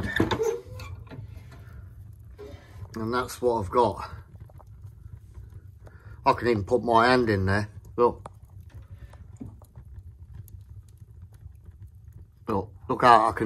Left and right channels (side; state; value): both; identical; correlation 1.00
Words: And that's what I've got. I can even put my hand in there. Look. Look how I